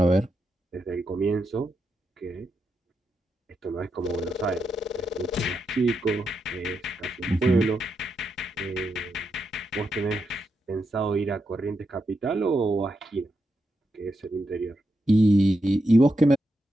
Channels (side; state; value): both; normal; correlation 0.85